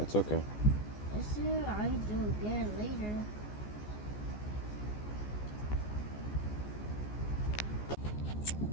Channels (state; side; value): late; right; 14 ms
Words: okay. I said I do again later.